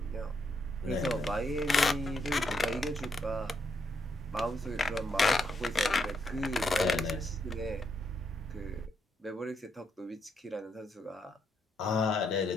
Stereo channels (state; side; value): normal; both; correlation 0.78